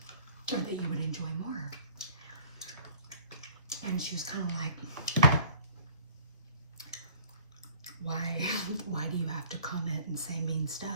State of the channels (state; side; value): inverted; both; correlation -0.50